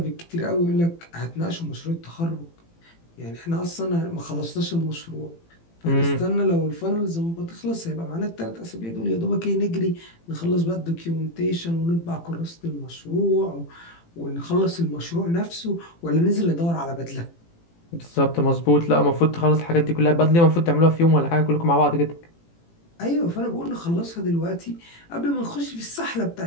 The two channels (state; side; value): late; right; 18 ms